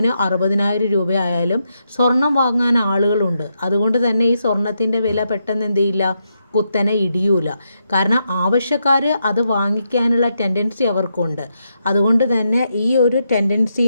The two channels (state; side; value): inverted; both; correlation -0.82